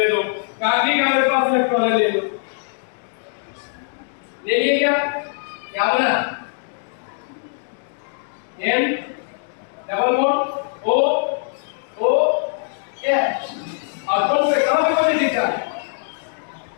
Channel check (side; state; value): right; silent; digital silence